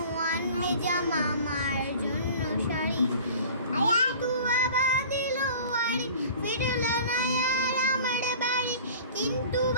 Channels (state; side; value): inverted; both; correlation -0.43